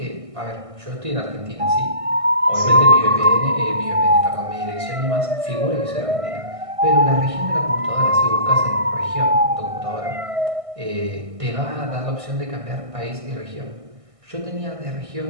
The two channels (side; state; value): left; late; 1.6 ms